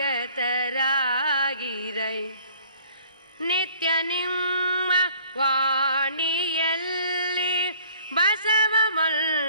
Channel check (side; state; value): both; inverted; correlation -0.54